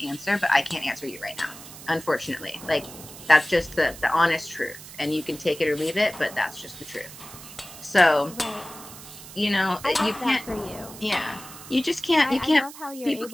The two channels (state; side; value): noise; right; hiss, 15 dB below the sound